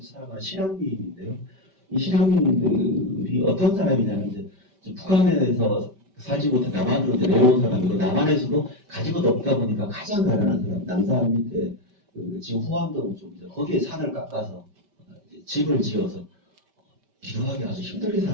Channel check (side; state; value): left; late; 5.1 ms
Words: 살아가는 실향민인데요. 이 실향민들이 어떤 사람이냐면 이제 북한에서 살지 못해 남한으로 내려온 사람이고 남한에서도 가지고도 없다 보니까 가장 가난한 사람 남산 밑에 그 지금 후암동 쪽이죠. 거기에 산을 깎아서 집을 지어서 비교하기 아주 힘들게